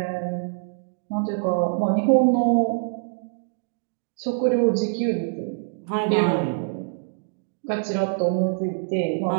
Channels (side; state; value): left; silent; digital silence